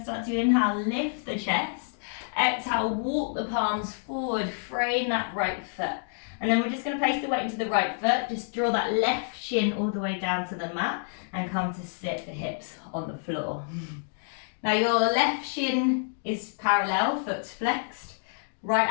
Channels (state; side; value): silent; right; digital silence